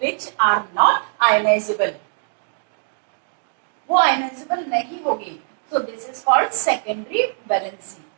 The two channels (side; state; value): left; silent; digital silence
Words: are not ionisable, वो आयनाइजेबल नहीं होगी, so this is called secondary valency,